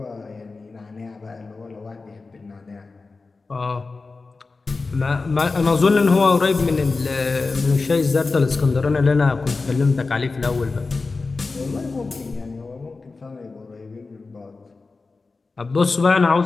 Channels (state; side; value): quieter; right; 3.9 dB